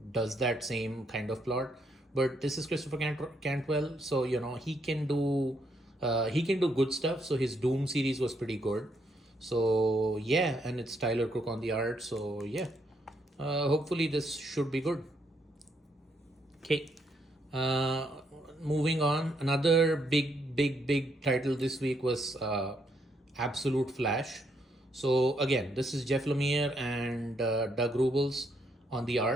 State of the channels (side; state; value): both; normal; correlation 0.74